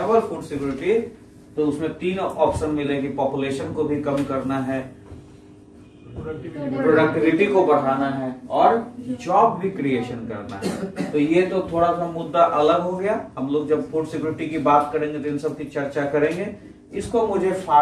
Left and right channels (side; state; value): both; identical; correlation 1.00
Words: फूड सिक्योरिटी, तो उसमें 3 ऑप्शन मिलेगी, पॉपुलेशन को भी कम करना है, प्रोडक्टिविटी को बढ़ाना है, और जॉब भी क्रिएशन करना है। तो ये तो थोड़ा सा मुद्दा अलग हो गया। हम लोग जब फूड सिक्योरिटी की बात करेंगे तो इन सब की चर्चा करेंगे। इसको मुझे